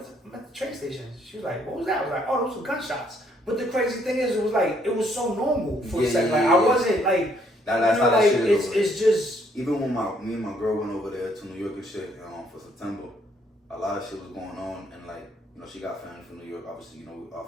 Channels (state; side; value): normal; both; correlation 0.68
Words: at the train station." She was like, "What was that?" I was like, "Oh, those were gunshots." But the crazy thing is, it was so normal for a second. Like I wasn't like, that's you know, how like that shit is. it's just. Even when me and my girl went over there to New York and shit, for September, a lot of shit was going on, and like, you know, she got family from New York. Obviously, you know, our